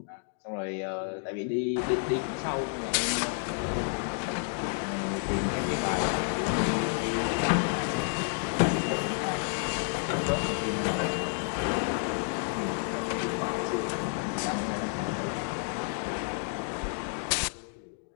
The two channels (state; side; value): silent; right; 58 dB below the other